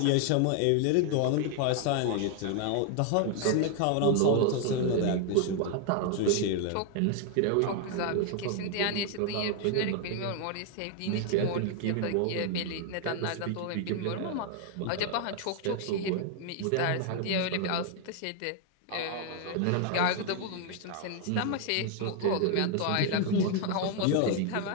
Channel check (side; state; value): both; different; correlation 0.00